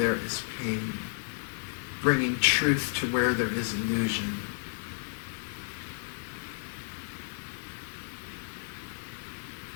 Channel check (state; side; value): silent; right; 56 dB below the other